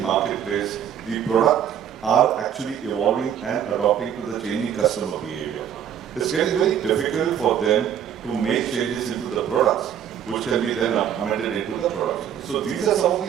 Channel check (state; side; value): quieter; left; 9.4 dB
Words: marketplace, the product are actually evolving and adopting to the changing customer behavior. It's getting very difficult for them to make changes into the products, which can be then amended into the product. So these are some of